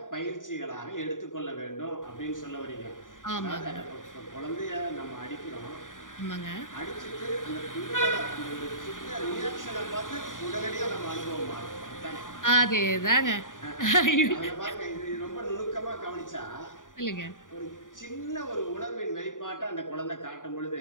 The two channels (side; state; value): right; late; 0.88 ms